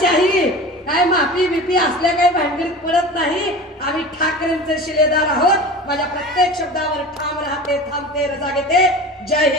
काय माफी बिफी असल्या काही भानगडीत पडत नाही. आम्ही ठाकरेंचे शिलेदार आहोत. माझ्या प्रत्येक शब्दावर ठाम राहते, थांबते, रजा घेते. जय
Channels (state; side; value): normal; both; correlation 0.35